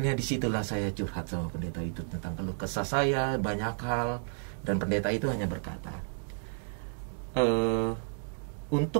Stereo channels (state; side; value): silent; left; digital silence